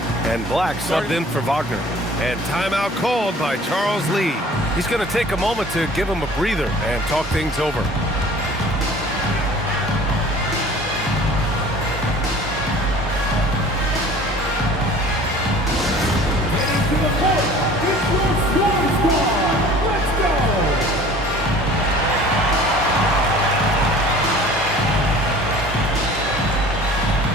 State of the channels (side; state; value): both; normal; correlation 0.46